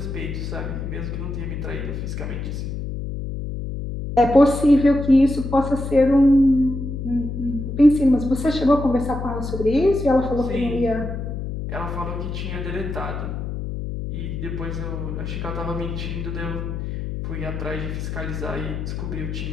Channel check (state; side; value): noise; left; hum, 5 dB below the sound